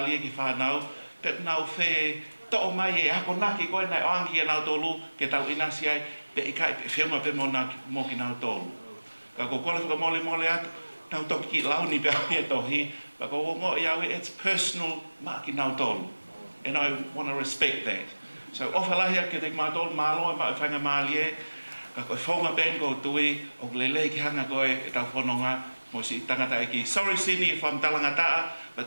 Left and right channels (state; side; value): inverted; both; correlation -1.00